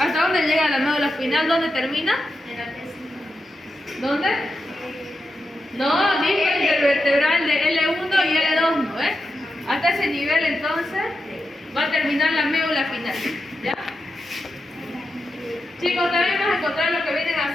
llega la médula espinal? ¿Dónde termina? ¿Dónde? No, dije el vertebral de L1 y L2, ¿no? Hasta ese nivel entonces va a terminar la médula espinal. ¿Ya? Chicos, también vamos a encontrar lo que vienen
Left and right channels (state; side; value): normal; both; correlation 0.88